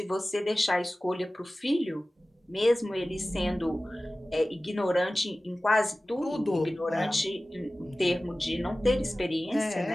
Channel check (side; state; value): both; normal; correlation 0.97